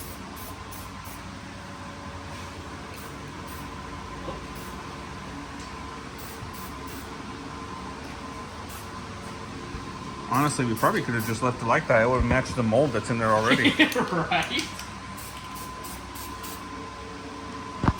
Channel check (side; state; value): both; identical; correlation 1.00